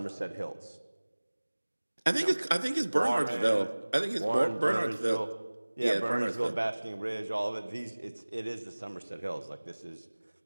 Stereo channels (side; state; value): both; inverted; correlation -1.00